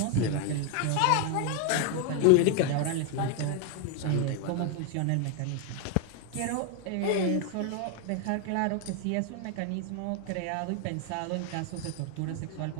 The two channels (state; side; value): different; both; correlation 0.01